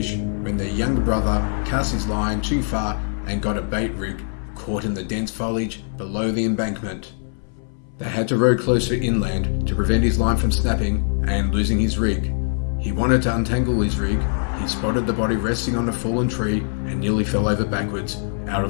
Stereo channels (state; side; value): silent; right; 64 dB below the other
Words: when their younger brother cast his line too far and got a bait rig caught in the dense foliage below the embankment. They had to row closer inland to prevent his line from snapping and losing his rig. He wanted to untangle his rig. He spotted the body resting on a fallen tree and nearly fell over backwards out